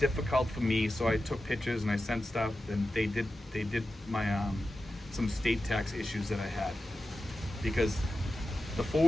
for me, so I took pictures and I sent stuff, and they did my some state tax issues that I had, because the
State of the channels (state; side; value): normal; both; correlation 0.92